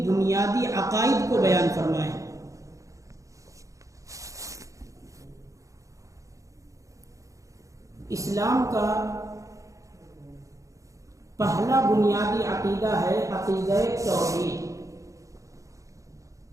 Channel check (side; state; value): left; late; 0.16 ms